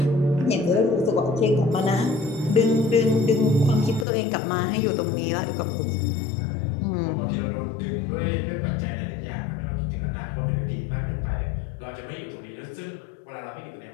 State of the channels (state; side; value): drops out; right; at 4.0 s